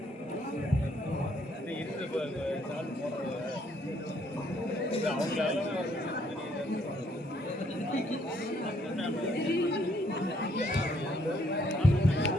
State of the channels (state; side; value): normal; both; correlation 0.68